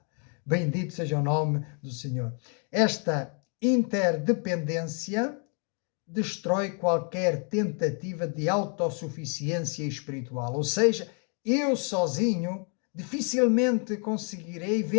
Bendito seja o nome do Senhor. Esta interdependência destrói qualquer tentativa de autossuficiência espiritual. Ou seja, eu sozinho dificilmente conseguirei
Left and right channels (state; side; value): quieter; right; 40.0 dB